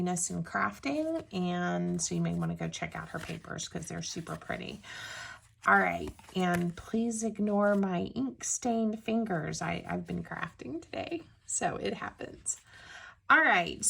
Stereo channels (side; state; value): both; identical; correlation 1.00